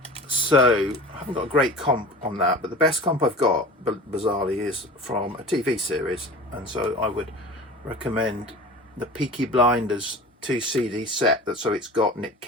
so I haven't got a great comp on that, but the best comp I've got bizarrely is from a TV series, and so I would recommend the Peaky Blinders 2 CD set. So it's got Nick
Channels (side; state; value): both; normal; correlation 0.38